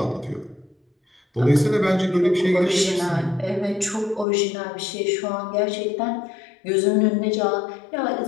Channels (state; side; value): drops out; right; at 4.2 s